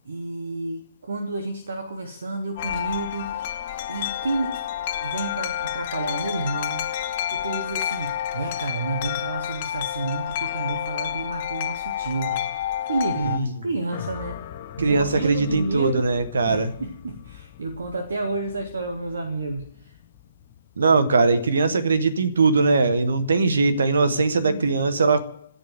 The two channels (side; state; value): both; inverted; correlation -0.71